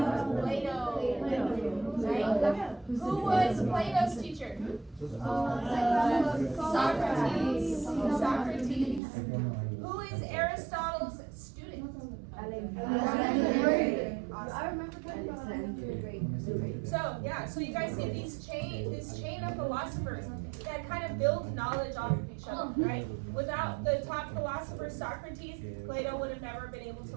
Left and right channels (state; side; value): drops out; left; at 9.0 s